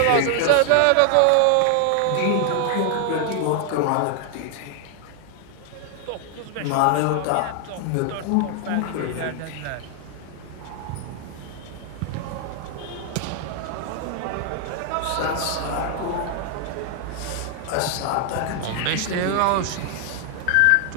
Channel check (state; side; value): different; both; correlation 0.00